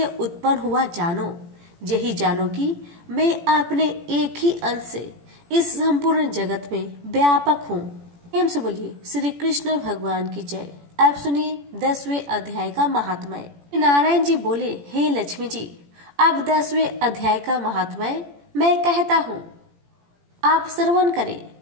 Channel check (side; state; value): left; late; 17 ms